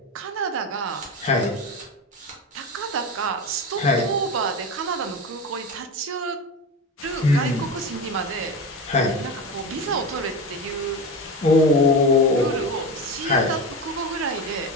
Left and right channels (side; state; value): both; normal; correlation 0.23